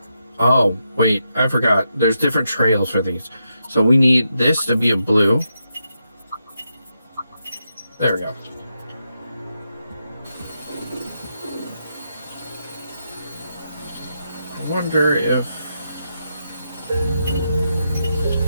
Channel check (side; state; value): both; inverted; correlation -0.83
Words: Oh, wait, I forgot. There's different trails for these. So we need this to be a blue. There we go. I wonder if